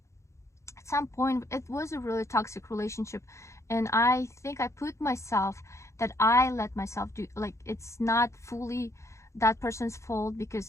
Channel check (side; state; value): right; late; 0.14 ms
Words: At some point, it was a really toxic relationship, and I think I put myself, that I let myself do, like, it's not fully that person's fault,